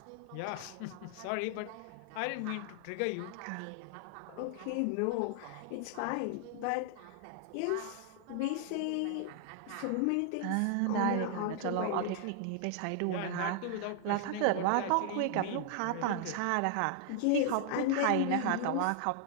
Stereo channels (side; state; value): both; different; correlation 0.00